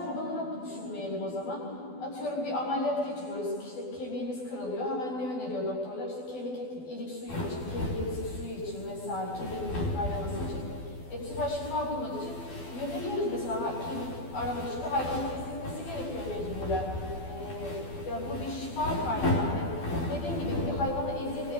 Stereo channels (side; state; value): right; late; 12 ms